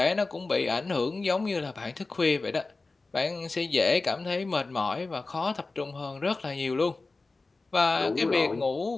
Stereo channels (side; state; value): right; quieter; 3.6 dB